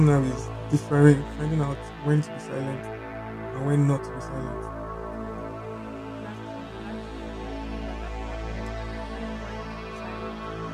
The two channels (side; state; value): both; identical; correlation 1.00